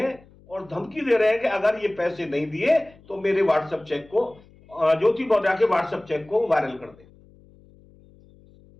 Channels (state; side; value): noise; left; hum, 26 dB below the sound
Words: और धमकी दे रहे हैं कि अगर ये पैसे नहीं दिए तो मेरे व्हाट्सएप चेक को, ज्योति मौर्य के व्हाट्सएप चेक को वायरल कर दे।